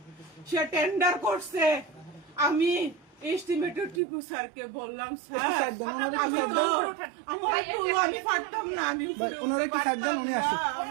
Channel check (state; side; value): drops out; left; at 4.0 s